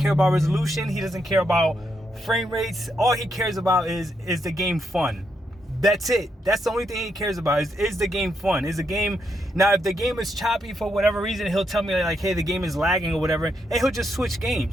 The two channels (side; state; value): both; normal; correlation 0.79